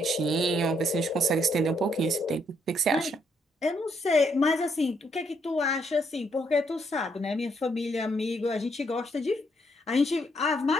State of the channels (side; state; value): both; normal; correlation 0.73